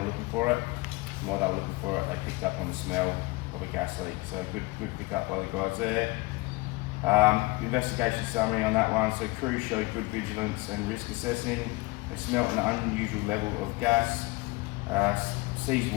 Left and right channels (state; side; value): quieter; right; 23.2 dB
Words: looking for it. And while they were looking for it, they picked up on the smell of a gas leak. So good pick up by the guys there. Investigation summary on that one. So crews showed good vigilance and risk assessing. They smelt an unusual level of gas. Ceased